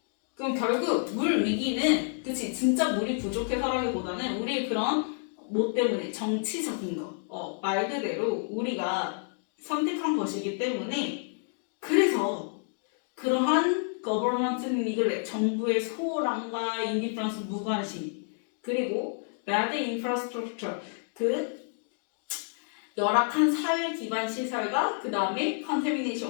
그럼 결국 물 위기는 그치 진짜 물이 부족해서라기보다는 우리의 그런 뭐 때문에 정치적인 거 말 그대로 우리가 선택한 것이기 때문에 그래서 그러한 government neglect 정부의 소홀함과 indifference 무관심 그리고 bad infrastructure 그 열악한 사회 기반 시설과 그 다음에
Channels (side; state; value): right; silent; 58 dB below the other